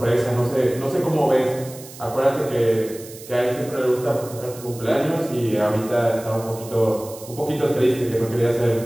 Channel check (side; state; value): right; noise; hiss, 17 dB below the sound